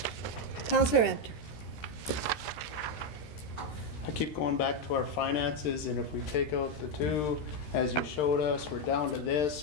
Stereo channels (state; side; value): late; right; 13 ms